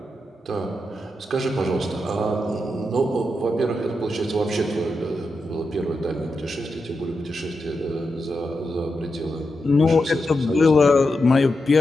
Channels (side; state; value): both; normal; correlation 0.87